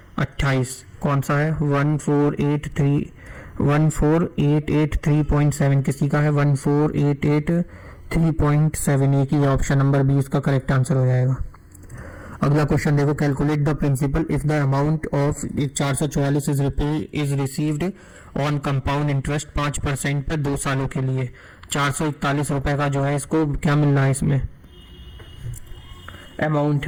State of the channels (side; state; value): both; identical; correlation 1.00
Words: 28, कौन सा है 14883.7, किसी का है 14883.7, एक ही ऑप्शन नंबर 20 का करेक्ट आंसर हो जाएगा। अगला क्वेश्चन देखो, calculate the principal if the amount of 444 is received on compound interest 5% पर 2 सालों के लिए। 441 रुपए का जो है इसको क्या मिल रहा है, इसमें अमाउंट